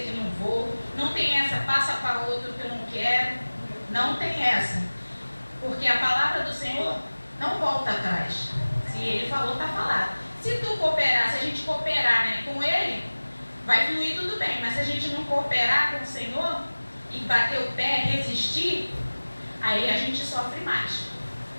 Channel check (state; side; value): inverted; both; correlation -1.00